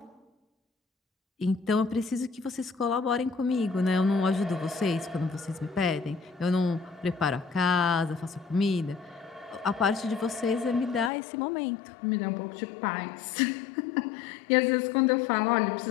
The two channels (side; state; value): right; drops out; at 11.1 s